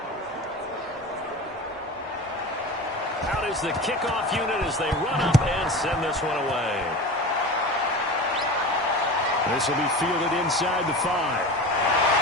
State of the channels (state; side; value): normal; both; correlation 0.31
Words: Out is the kickoff unit as they run up and send this one away. This will be fielded inside the 5.